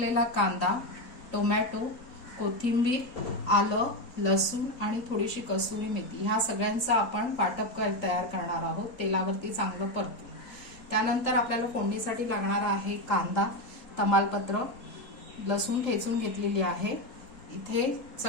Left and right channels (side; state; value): right; late; 4.2 ms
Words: कांदा, टोमॅटो, कोथिंबीर, आलं, लसूण आणि थोडीशी कसुरी मेथी. ह्या सगळ्यांचा आपण वाटप तयार करणार आहोत. तेलावरती चांगलं परतून. त्यानंतर आपल्याला फोडणीसाठी लागणार आहे कांदा, तमालपत्र, लसूण ठेचून घेतलेली आहे. इथे